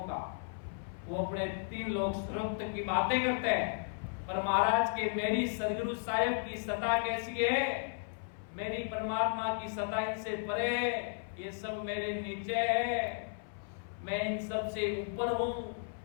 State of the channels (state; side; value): silent; right; 55 dB below the other